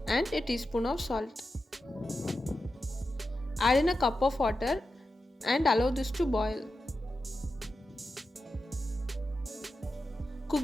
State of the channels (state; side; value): normal; both; correlation 0.90